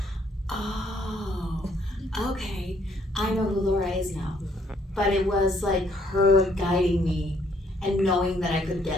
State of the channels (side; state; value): both; normal; correlation 0.67